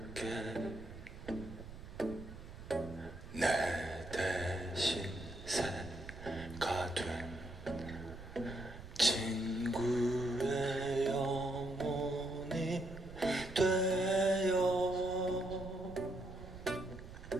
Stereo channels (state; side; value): noise; right; rumble, 13 dB below the sound